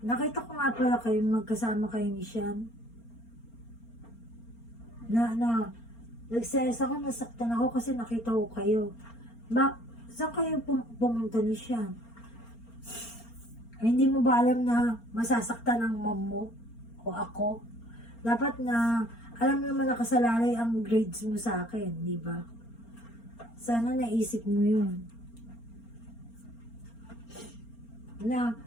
Nakita ko nga pala kayo, magkasama kayo ni Sian. Nagselos ako, nasaktan ako kasi nakita ko kayo. Saan kayo pumunta ni Sian? Ay, hindi mo ba alam na masasaktan ng mom mo o ako? Dapat na, alam naman nakasalalay ang grades mo sa akin, di ba? Sana naisip mo yun. Na,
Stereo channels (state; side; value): late; right; 4.3 ms